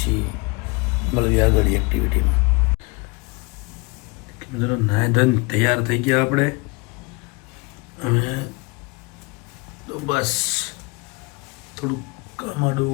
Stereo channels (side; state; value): right; quieter; 27.7 dB